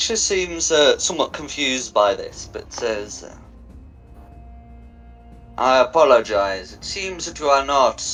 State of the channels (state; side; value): identical; both; correlation 1.00